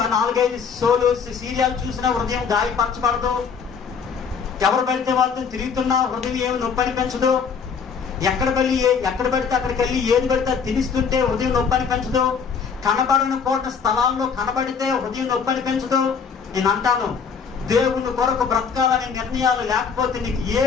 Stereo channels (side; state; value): right; quieter; 6.1 dB